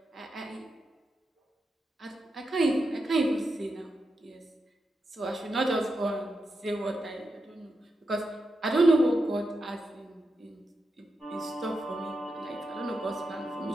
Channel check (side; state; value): both; normal; correlation 0.87